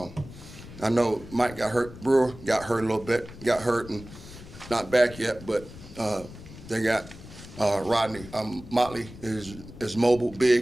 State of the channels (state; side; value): noise; left; rumble, 16 dB below the sound